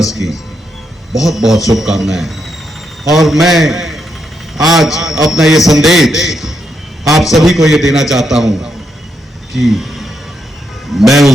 की बहुत बहुत शुभकामनाएं। और मैं आज अपना ये संदेश आप सभी को ये देना चाहता हूं कि मैं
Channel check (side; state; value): both; normal; correlation 0.81